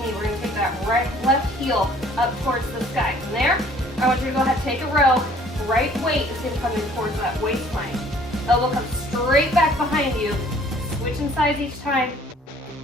knee. We're gonna take that left heel up towards the sky. From there, I want you to go ahead and take a row. Right weight is gonna come in towards that waistline. Elbow comes straight back behind you. Switching sides each time.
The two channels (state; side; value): normal; both; correlation 0.56